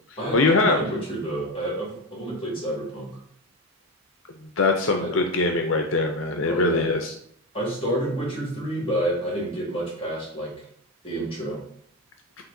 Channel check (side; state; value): both; normal; correlation 0.15